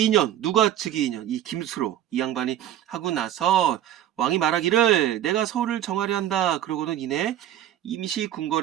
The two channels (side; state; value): left; quieter; 11.8 dB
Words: 2년 누가 즉위 2년 이 김수로 이 양반이 하고 나서 왕이 말하기를 내가 서울을 정하려 한다. 그러고는 이내 임시